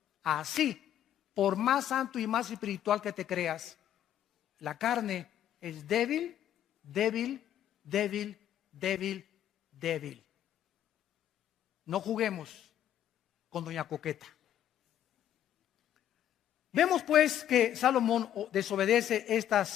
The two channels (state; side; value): quieter; right; 11.0 dB